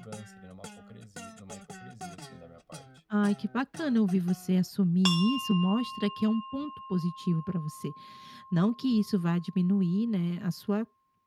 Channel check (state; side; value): identical; both; correlation 1.00